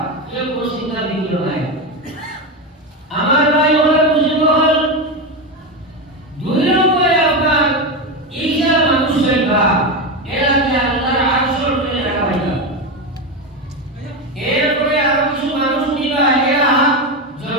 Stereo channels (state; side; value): normal; both; correlation 0.14